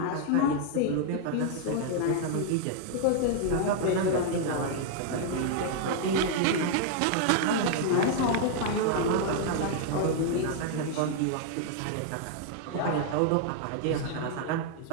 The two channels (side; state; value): both; different; correlation 0.00